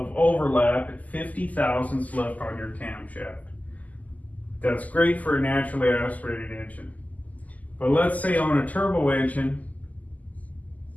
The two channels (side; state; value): right; late; 0.077 ms